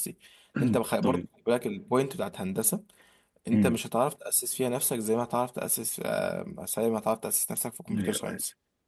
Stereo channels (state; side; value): identical; both; correlation 1.00